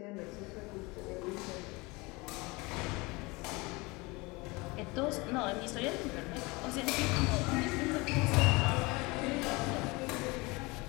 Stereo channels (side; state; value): right; quieter; 24.8 dB